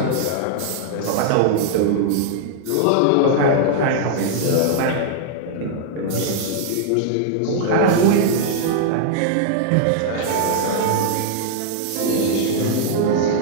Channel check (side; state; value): both; different; correlation -0.01